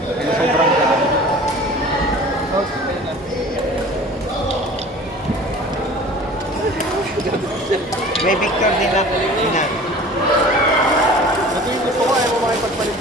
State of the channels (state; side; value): normal; both; correlation 0.43